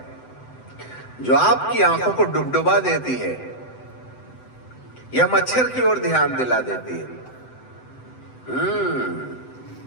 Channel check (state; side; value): late; right; 7.9 ms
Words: जो आपकी आंखों को डुबडुबा देती है या मच्छर की ओर ध्यान दिला देती है।